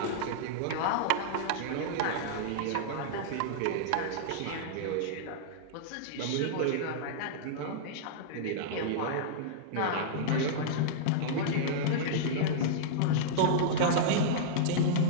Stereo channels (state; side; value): different; both; correlation -0.02